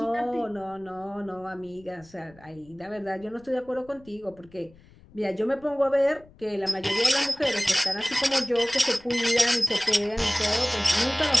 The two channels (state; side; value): noise; left; rumble, 26 dB below the sound